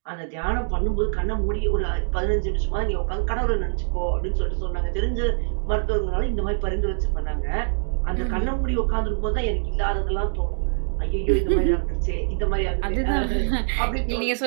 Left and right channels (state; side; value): silent; left; digital silence